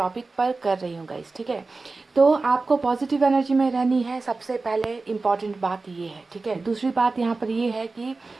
पर कर रही हूँ गाइस, ठीक है। तो आपको पॉजिटिव एनर्जी में रहनी है, सबसे पहले इम्पॉर्टेंट बात ये है, ठीक है। दूसरी बात यहाँ पर ये है कि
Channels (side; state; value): left; quieter; 3.7 dB